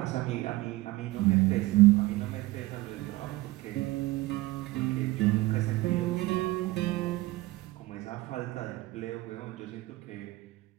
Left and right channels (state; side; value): quieter; left; 19.4 dB